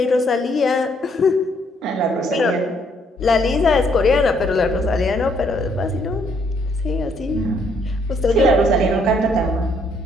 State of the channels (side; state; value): both; normal; correlation 0.69